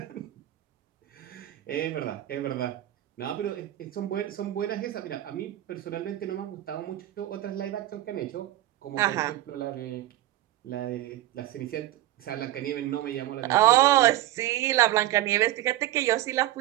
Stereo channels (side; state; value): left; quieter; 14.4 dB